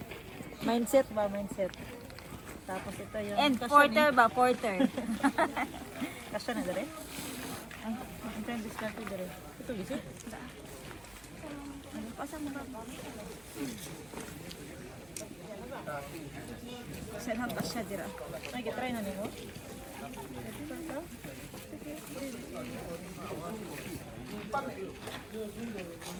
Mindset ba? Mindset. Tapos ito yung... And kasya porter ba? Porter. Kasya na dere? Ay, ang time discarte dere. Ito visit? Pasang mo ba? Saan ang pasya dira? Ay, kitry na nimo.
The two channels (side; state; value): right; noise; hum, 26 dB below the sound